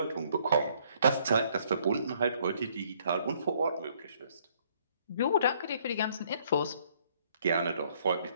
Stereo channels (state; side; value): inverted; both; correlation -0.65